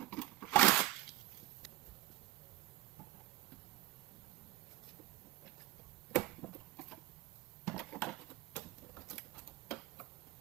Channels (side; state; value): left; quieter; 16.5 dB